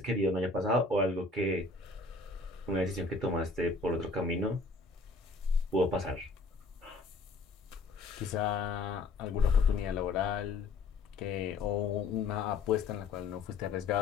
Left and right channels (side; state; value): right; quieter; 3.6 dB